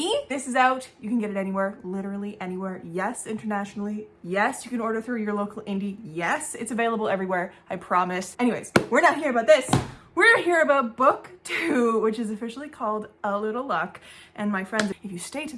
This is out. You can get it anywhere, literally anywhere. Yes, internationally. Yes, you can order through your local indie. Yes, it's available everywhere, I promise. Anyways, we're not here about this. We're here about book 2, which is officially called A Little Luck. And my friends, if you stay to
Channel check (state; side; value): identical; both; correlation 1.00